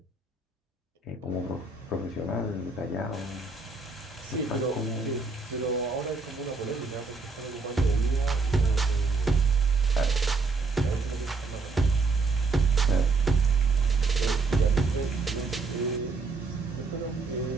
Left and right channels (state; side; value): quieter; left; 4.0 dB